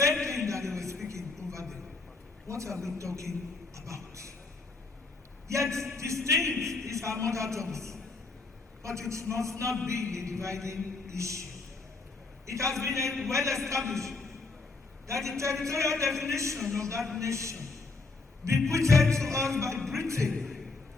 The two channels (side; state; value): right; quieter; 3.7 dB